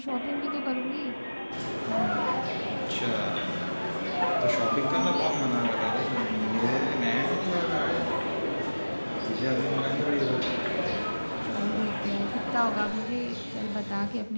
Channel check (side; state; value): both; inverted; correlation -1.00